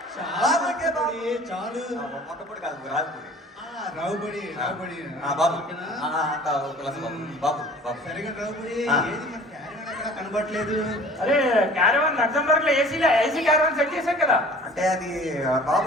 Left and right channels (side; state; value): both; normal; correlation 0.47